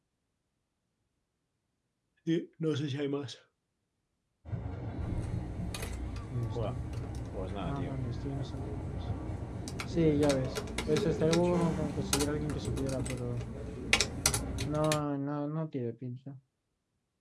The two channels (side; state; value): both; identical; correlation 1.00